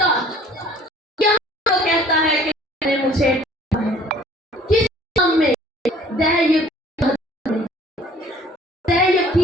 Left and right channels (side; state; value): both; normal; correlation 0.53